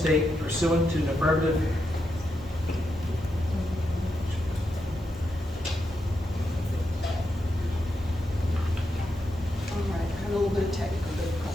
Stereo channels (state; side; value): normal; both; correlation 0.85